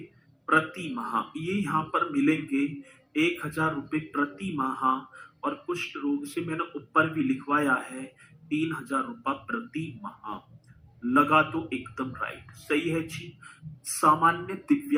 प्रति माह ये यहां पर मिलेंगे, 1,000 रुपए प्रति माह। और कुष्ठ रोग से मैंने ऊपर भी लिखवाया है 3,000 रुपया प्रति माह, लगा तो एकदम राइट, सही है जी। सामान्य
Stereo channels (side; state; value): both; identical; correlation 1.00